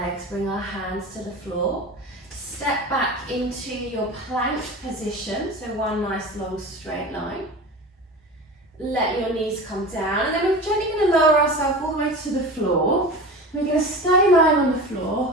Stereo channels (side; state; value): both; normal; correlation 0.32